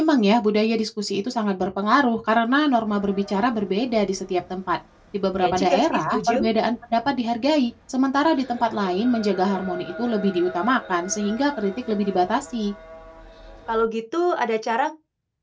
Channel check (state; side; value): identical; both; correlation 1.00